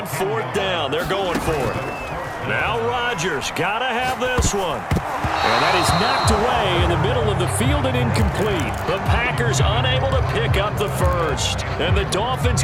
4th down. They're going for it. Now Rodgers, got to have this one. And that is knocked away in the middle of the field and incomplete. The Packers unable to pick up the 1st. And the Dolphins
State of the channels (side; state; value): both; identical; correlation 1.00